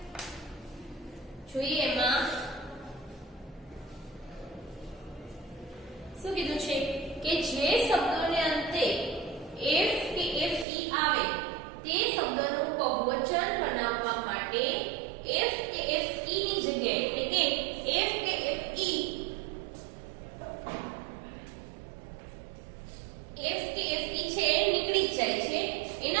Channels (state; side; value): drops out; left; at 10.7 s